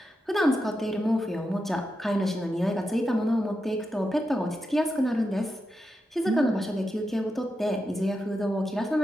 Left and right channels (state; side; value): normal; both; correlation 0.87